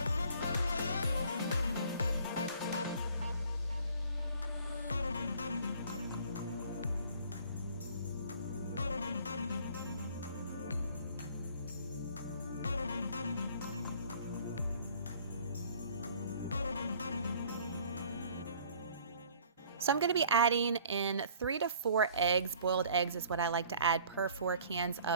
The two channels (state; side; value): inverted; both; correlation -0.54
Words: So I'm going to be adding in 3 to 4 eggs. Boiled eggs is what I like to add per 4 cans